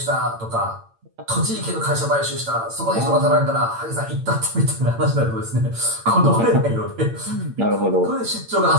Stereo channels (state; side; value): late; left; 8.8 ms